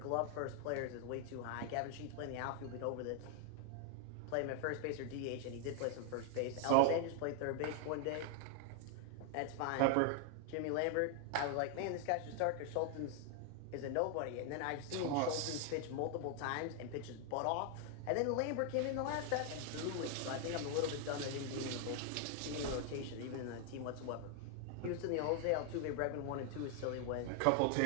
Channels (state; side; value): different; both; correlation 0.00